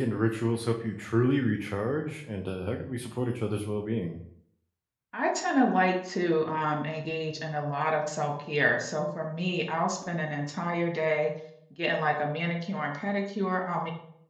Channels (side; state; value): both; identical; correlation 1.00